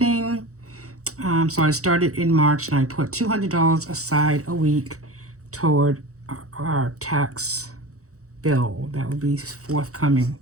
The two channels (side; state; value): left; late; 0.65 ms